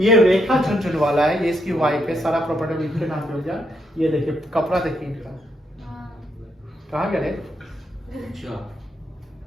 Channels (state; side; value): normal; both; correlation 0.78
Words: रेखा झुनझुनवाला है, ये इसकी वाइफ है, सारा प्रॉपर्टी इनके नाम पे हो जाए। ये देखिए कपड़ा देखिए इनका, कहाँ गए? अच्छा